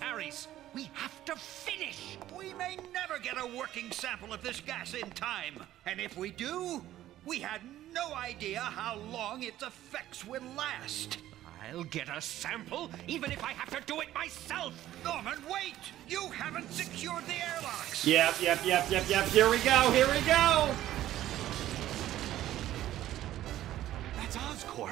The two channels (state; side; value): quieter; left; 13.5 dB